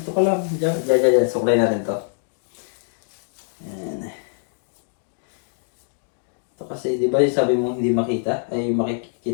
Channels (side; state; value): right; silent; digital silence